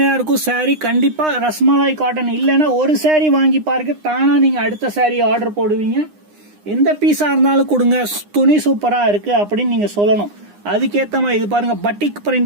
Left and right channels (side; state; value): left; late; 9.8 ms